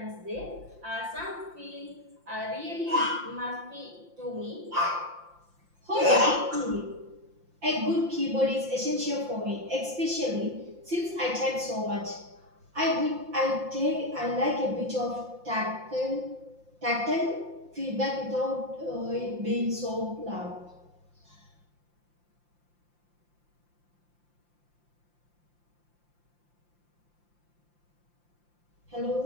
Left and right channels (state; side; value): late; left; 5.8 ms